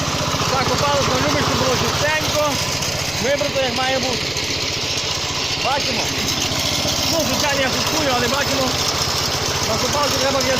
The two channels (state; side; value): noise; left; rumble, 21 dB below the sound